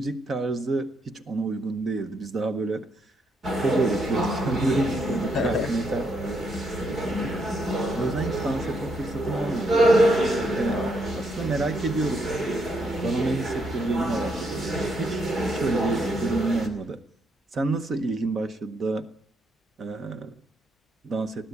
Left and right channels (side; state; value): both; normal; correlation 0.76